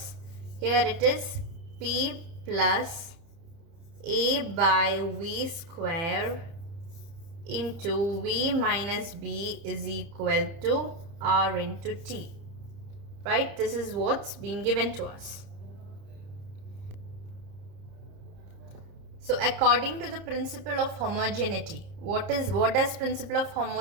Here it is P plus A by V square into V minus B is equal to R into T. Right? This is what's been given to us. So according to the principle of homogeneity, what does principle of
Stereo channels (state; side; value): late; left; 30 ms